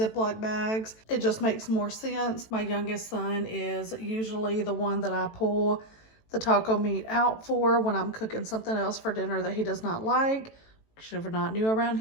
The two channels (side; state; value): right; late; 18 ms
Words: bags. It just makes more sense. My youngest son is usually the one that I pull the taco meat out for when I'm cooking something else for dinner that he does not like. If you're not new around